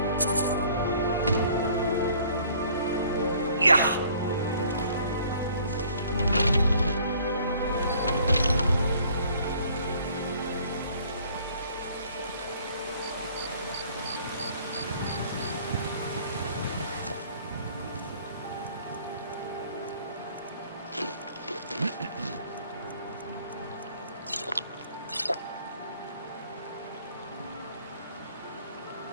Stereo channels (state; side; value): inverted; both; correlation -0.57